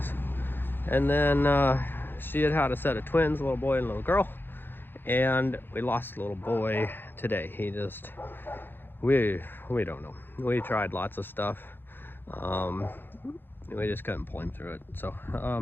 And then she had a set of twins, a little boy and a little girl. And we lost the little boy today. He just, we don't know. We tried lots of stuff. We just couldn't pull him through it. So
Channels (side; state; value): right; late; 0.099 ms